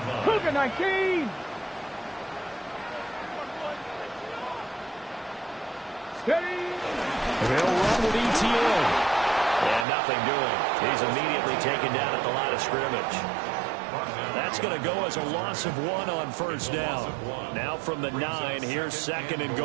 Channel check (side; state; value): left; drops out; at 9.9 s